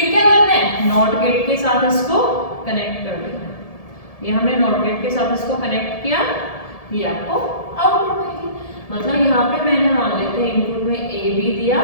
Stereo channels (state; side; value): late; right; 1.7 ms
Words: क्या करना है? नॉट गेट के साथ इसको कनेक्ट कर देना। ये हमने नॉट गेट के साथ इसको कनेक्ट किया, ये आपको आउटपुट मिलेगी। मतलब यहाँ पे मैंने मान लेते हैं इनपुट में ए बी दिया,